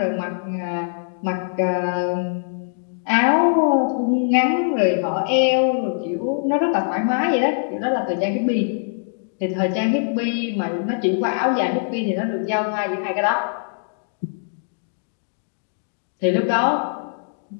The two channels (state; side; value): silent; right; digital silence